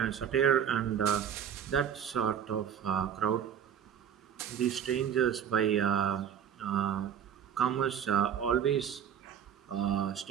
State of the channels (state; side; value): quieter; left; 8.7 dB